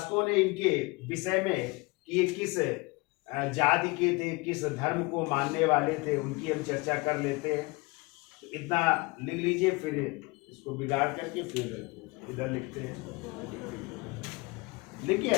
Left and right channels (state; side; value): quieter; right; 25.1 dB